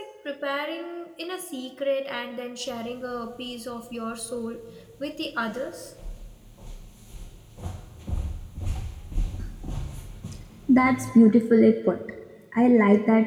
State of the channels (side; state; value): both; identical; correlation 1.00